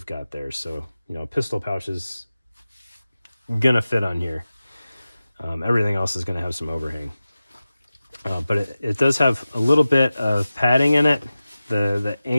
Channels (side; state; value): both; inverted; correlation -0.95